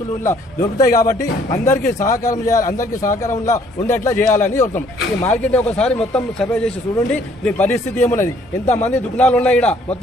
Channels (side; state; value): both; normal; correlation 0.62